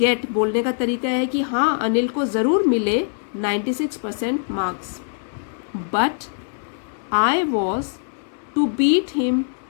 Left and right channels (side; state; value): right; silent; 64 dB below the other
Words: बोलने का तरीका है कि हाँ, अनिल को ज़रूर मिले 96% marks. But I was to beat him